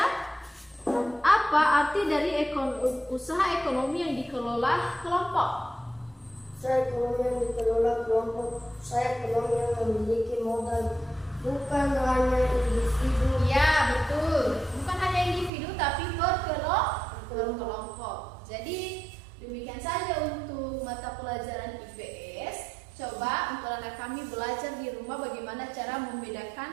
arti dari usaha ekonomi yang dikelola kelompok? Usaha ekonomi yang dikelola kelompok, usaha ekonomi yang memiliki modal bukan hanya individu. Ya, betul. Bukan hanya individu tapi berkelompok. Jadi demikian saja untuk mata pelajaran IPS. Coba untuk anak kami belajar di rumah bagaimana cara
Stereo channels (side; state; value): left; drops out; at 15.5 s